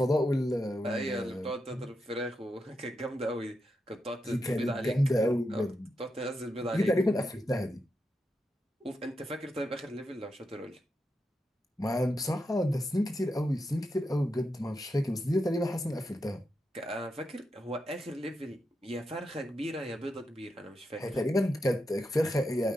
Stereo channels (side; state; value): both; normal; correlation 0.86